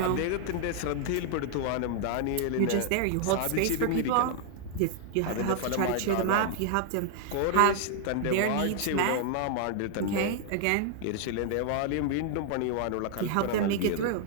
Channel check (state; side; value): different; both; correlation 0.00